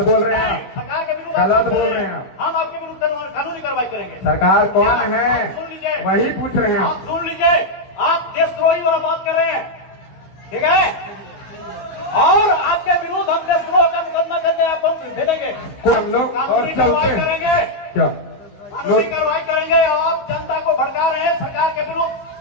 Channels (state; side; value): late; right; 16 ms